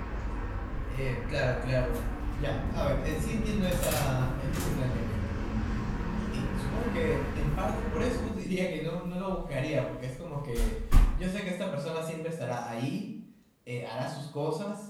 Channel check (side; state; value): both; identical; correlation 1.00